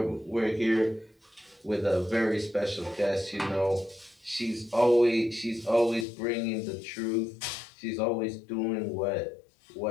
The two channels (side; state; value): right; drops out; at 6.1 s